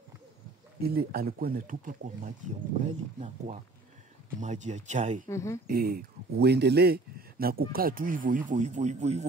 ile alikuwa anatupa kwa maji ya ugali na kwa maji ya chai. Uendelee na kukaa tu hivyo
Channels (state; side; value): quieter; left; 3.3 dB